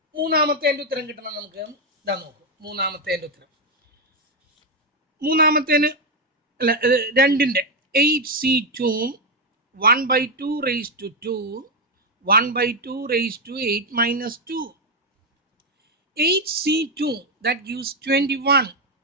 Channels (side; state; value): both; normal; correlation 0.05